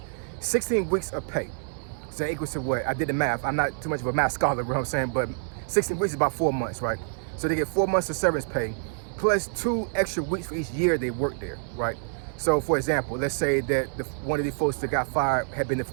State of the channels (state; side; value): silent; left; 57 dB below the other